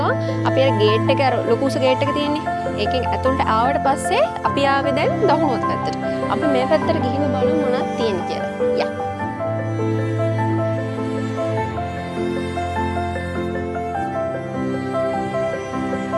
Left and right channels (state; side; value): identical; both; correlation 1.00